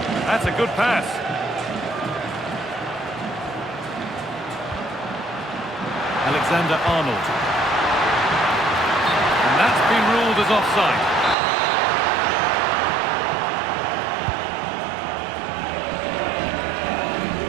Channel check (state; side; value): drops out; left; at 11.4 s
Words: That's a good pass. Alexander-Arnold. And that's been ruled as offside.